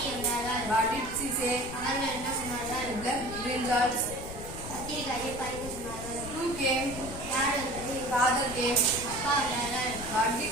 வந்தார்கள். What did she say? அவர்கள் என்ன சொன்னார்கள்? Left brinjals. கத்திரிக்காயை பறிக்க சொன்னார்கள். Who came? யார் வந்தது? Father came. அப்பா வந்தார்கள்.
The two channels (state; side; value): noise; left; rumble, 10 dB below the sound